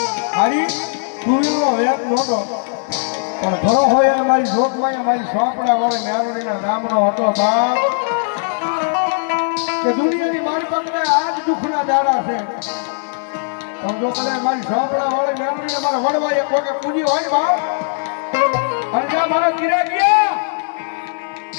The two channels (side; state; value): right; silent; 55 dB below the other